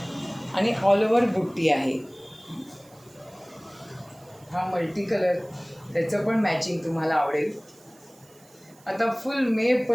आणि ऑल ओव्हर बुट्टी आहे. हा मल्टी कलर, त्याचं पण मॅचिंग तुम्हाला आवडेल. आता फुल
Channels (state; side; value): noise; right; hiss, 27 dB below the sound